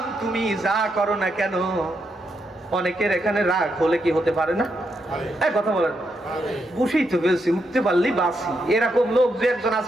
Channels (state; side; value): normal; both; correlation 0.81